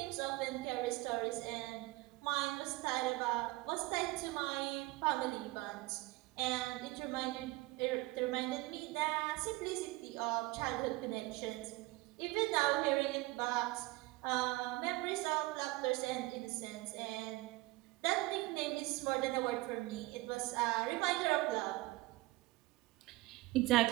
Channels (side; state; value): left; quieter; 20.9 dB